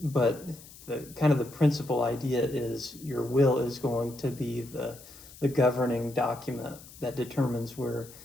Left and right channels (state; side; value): noise; left; hiss, 19 dB below the sound